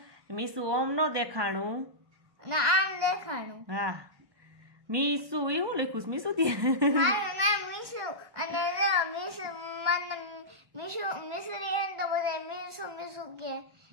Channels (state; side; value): late; left; 1.1 ms